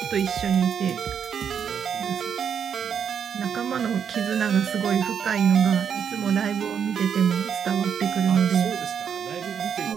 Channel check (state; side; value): quieter; left; 7.7 dB